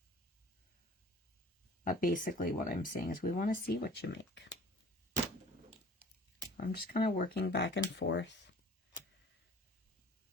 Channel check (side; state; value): both; normal; correlation 0.47